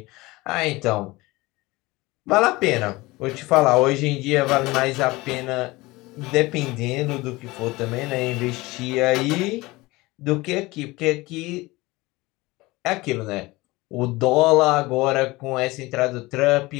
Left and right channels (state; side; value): quieter; right; 21.4 dB